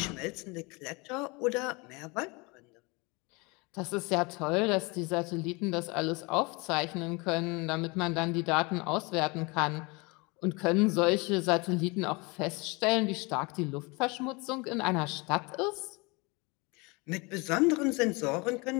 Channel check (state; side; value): quieter; right; 27.3 dB